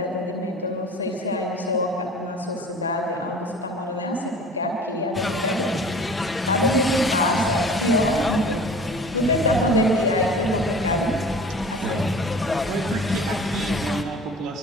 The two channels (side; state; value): both; normal; correlation 0.43